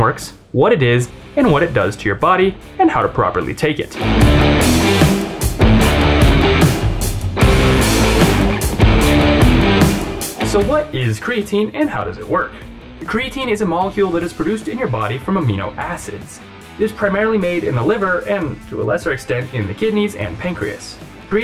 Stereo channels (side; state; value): both; identical; correlation 1.00